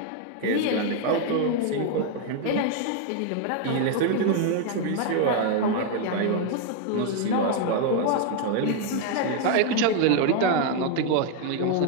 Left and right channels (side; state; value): both; different; correlation 0.00